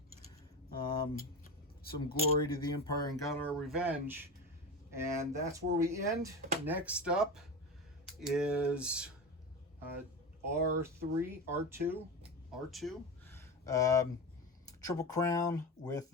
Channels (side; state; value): both; normal; correlation 0.24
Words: some glory to the Empire and got our revenge. And that's where we end. Next up is R2. Triple Crown with